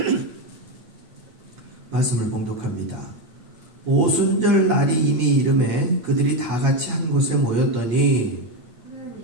말씀을 봉독합니다. 오순절 날이 이미 이름에 그들이 다 같이 한 곳에 모였더니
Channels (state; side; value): late; left; 8.7 ms